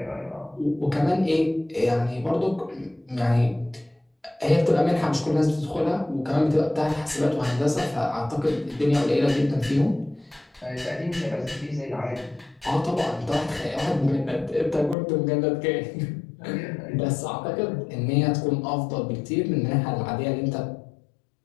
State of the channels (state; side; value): drops out; right; at 15.0 s